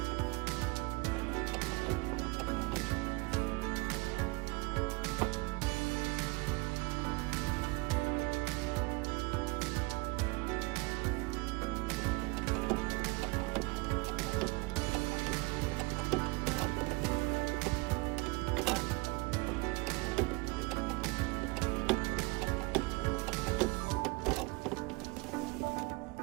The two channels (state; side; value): quieter; left; 25.6 dB